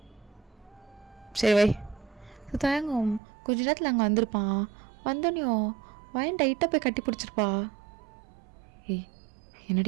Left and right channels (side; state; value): left; drops out; at 3.2 s